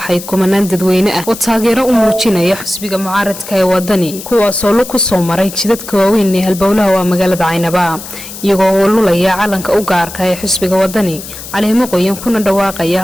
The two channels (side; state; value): left; noise; hiss, 12 dB below the sound